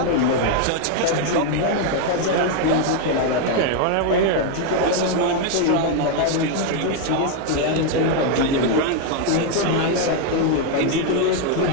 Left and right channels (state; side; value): different; both; correlation 0.01